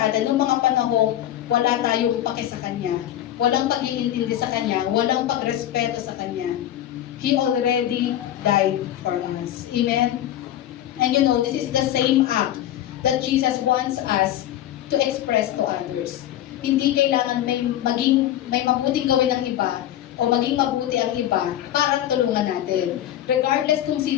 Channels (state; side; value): quieter; right; 12.3 dB